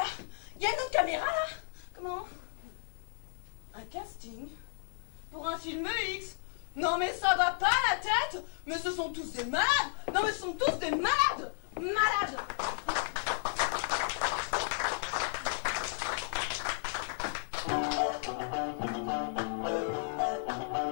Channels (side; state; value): right; silent; digital silence